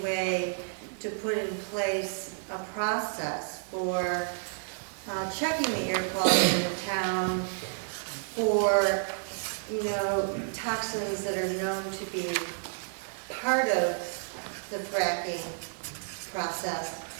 way to put in place a process for checking the air quality in the town for, toxins that are known to be part of the fracking process,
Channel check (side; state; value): left; silent; digital silence